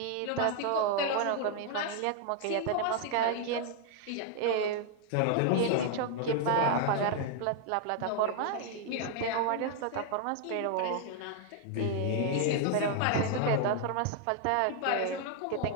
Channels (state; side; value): different; both; correlation 0.00